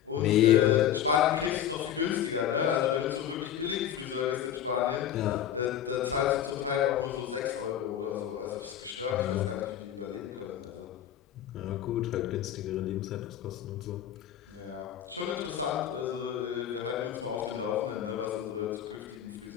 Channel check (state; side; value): quieter; right; 10.2 dB